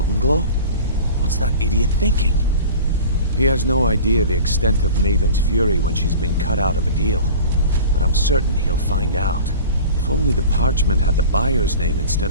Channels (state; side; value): inverted; both; correlation -0.38